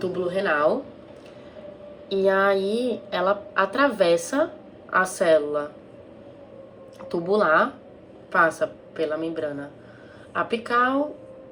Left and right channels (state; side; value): identical; both; correlation 1.00